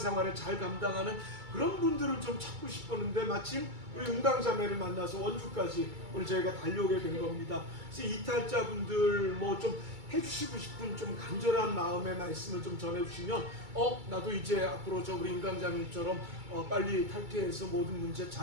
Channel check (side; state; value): left; late; 2.3 ms